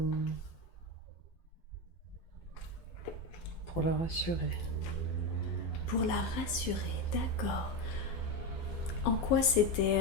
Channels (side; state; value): right; late; 12 ms